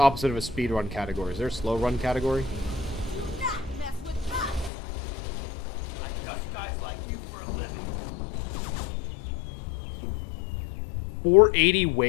of a speed run category. Is there a slow run category? I dust guys like you for a living. 480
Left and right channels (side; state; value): right; drops out; at 4.7 s